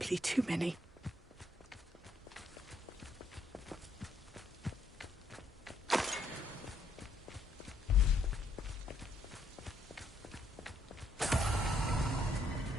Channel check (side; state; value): both; normal; correlation 0.71